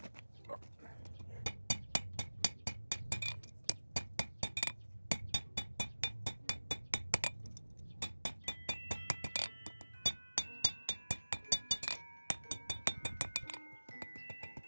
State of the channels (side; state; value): both; inverted; correlation -1.00